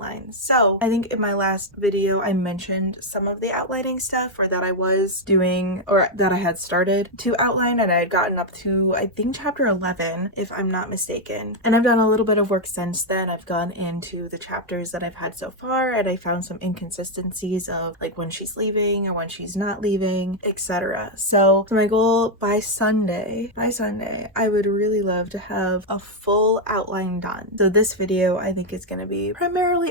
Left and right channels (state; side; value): normal; both; correlation 0.01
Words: So I think in my last video I mentioned some of the outlining stuff, or that I was doing, or that I had started to outline, and I had gotten up to, I think, chapter 11, if I'm not mistaken. And I've done a little bit of work since then. I've gone into the chapters that I've had so far, and I found some inconsistencies of like when she's leaving or when she's not leaving, etc. So my goal by Sunday, I would really love to have a full outline done. So this video, I think, is going to be